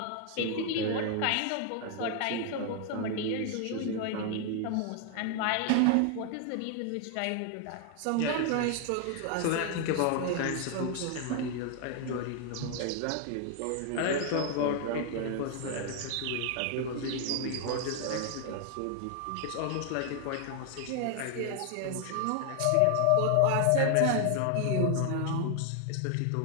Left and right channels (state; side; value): different; both; correlation 0.00